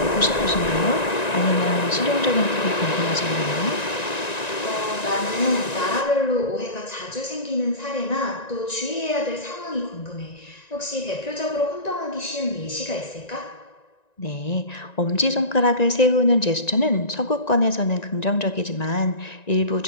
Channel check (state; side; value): late; right; 1.9 ms